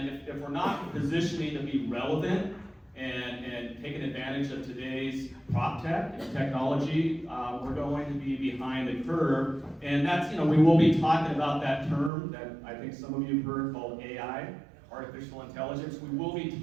if we're not positioning to be relevant and taking advantage of today's prop tech and technology, we're going to be behind the curve. And that's, we will be talking about that term that I think some of you have heard called AI, artificial intelligence. We will be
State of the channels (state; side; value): drops out; left; at 12.1 s